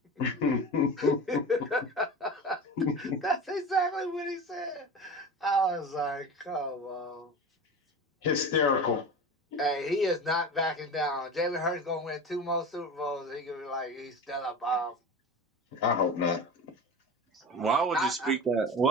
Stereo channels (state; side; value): normal; both; correlation 0.31